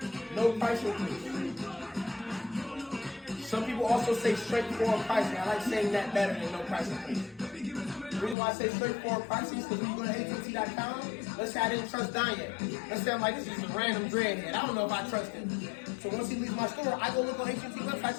No price increase. Some people also say straightforward pricing. I like saying that better than no price increase. The reason why I say straightforward pricing is because when you go to AT&T.com, let's say I didn't trust Don yet. Let's say I'm like, this is a random dreadhead. I don't know if I trust him. So once he leaves my store, I go look on AT&T website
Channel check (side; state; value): right; drops out; at 8.3 s